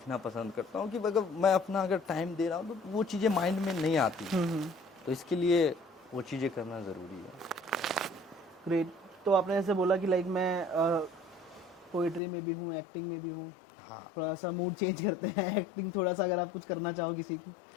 पसंद करता हूँ कि अगर मैं अपना अगर टाइम दे रहा हूँ तो वो चीज़ें माइंड में नहीं आती, तो इसके लिए वो चीज़ें करना ज़रूरी है। ग्रेट। तो आपने ऐसे बोला कि लाइक मैं पोइट्री में भी हूँ, एक्टिंग में भी हूँ। हाँ, थोड़ा सा मूड चेंज करते हैं, एक्टिंग थोड़ा सा अगर आप कुछ करना चाहो किसी की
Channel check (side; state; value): right; drops out; at 12.2 s